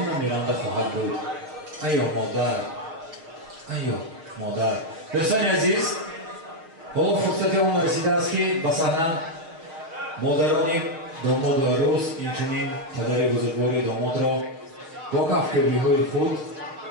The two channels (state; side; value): late; left; 6.4 ms